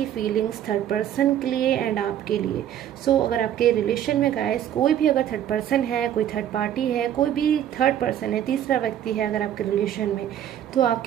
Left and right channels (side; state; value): left; quieter; 10.7 dB